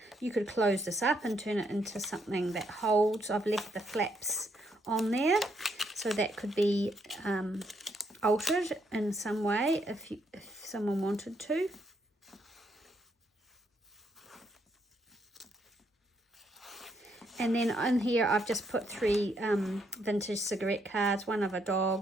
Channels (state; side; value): normal; both; correlation 0.74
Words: you could close this up and turn it into something that holds. I've left the flaps on there, so that could be altered in some way if someone wanted to. And then in here I've just put 3 vintage cigarette cards, one of a